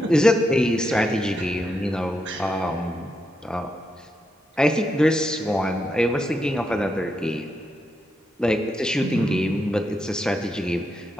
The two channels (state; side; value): normal; both; correlation 0.83